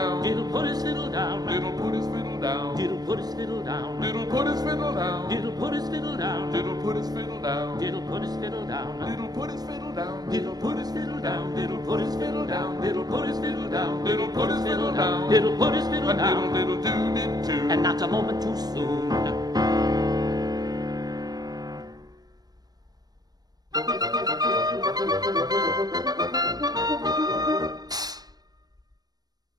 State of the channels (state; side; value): late; left; 0.19 ms